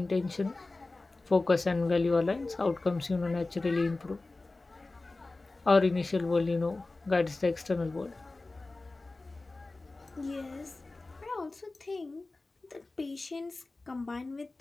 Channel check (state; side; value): quieter; right; 3.2 dB